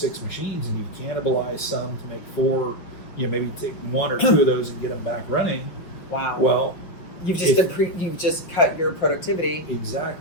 machines, and you cannibalize some to make 4, maybe take 1 or 2 of those and get them back running. Wow. Well, you've just cut your productivity.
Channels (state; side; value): late; right; 5.8 ms